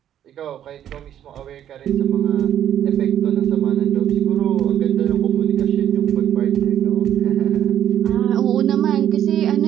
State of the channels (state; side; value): quieter; left; 10.6 dB